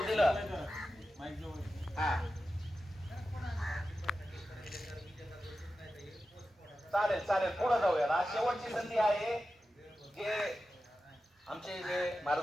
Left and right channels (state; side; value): normal; both; correlation 0.92